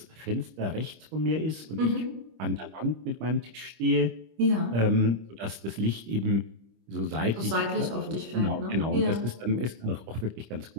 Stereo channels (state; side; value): late; left; 25 ms